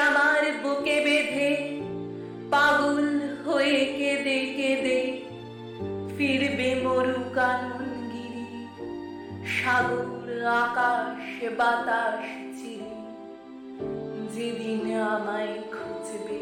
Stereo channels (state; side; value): identical; both; correlation 1.00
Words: আমার বুকে বেঁধে পাগল হয়ে কেঁদে কেঁদে ফিরবে মরু কাননগিরি, সাগর আকাশ বাতাস চিরে। যেদিন আমায় খুঁজবে,